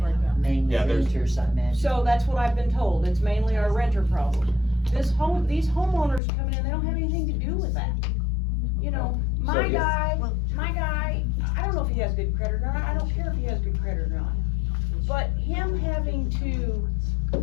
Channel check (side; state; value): right; drops out; at 6.2 s